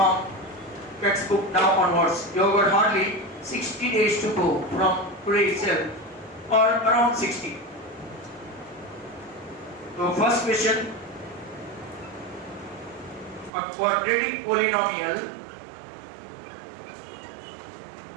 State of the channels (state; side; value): drops out; left; at 13.5 s